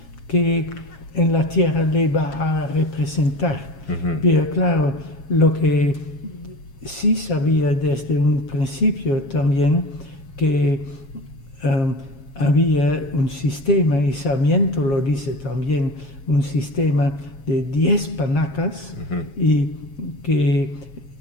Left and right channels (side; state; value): right; late; 7.3 ms